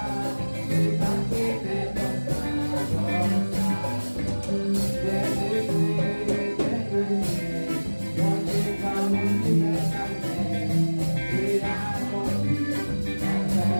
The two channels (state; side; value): inverted; both; correlation -1.00